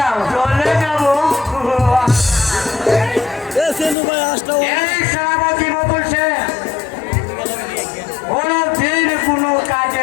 চলে যাবো। ভাই আসটা এই সেনাপতি বলছে কোনো দিন কোনো কাজে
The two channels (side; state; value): right; drops out; at 4.0 s